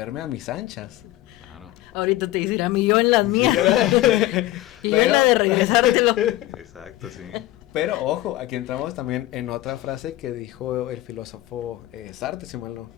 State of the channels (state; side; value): quieter; right; 16.1 dB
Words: a mis anchas. Claro. Ahorita te dirá mi yo en las mías. Y yo en la de regresártelo. Exacto, sí. Pero ojo, aquí entramos también en otra frase que dijo el filósofo Sartre, si mal